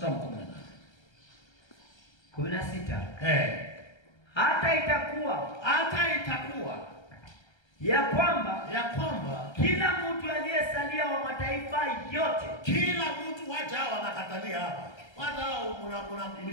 16. Hata itakuwa ya kwamba kila mtu aliyesalia wa mataifa yote, kila mtu wacha wanakatalia hapa. Wao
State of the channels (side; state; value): right; late; 1.3 ms